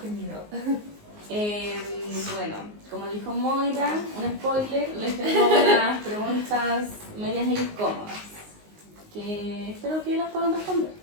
qué miedo. Bueno, como dijo Moira, un spoiler, les tengo unas preguntas medias incómodas que espero que las puedan responder.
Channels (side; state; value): left; late; 19 ms